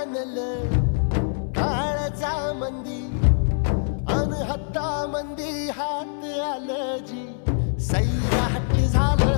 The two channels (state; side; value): silent; right; 63 dB below the other